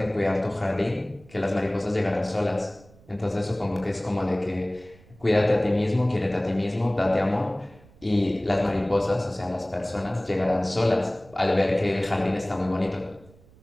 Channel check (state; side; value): noise; right; rumble, 26 dB below the sound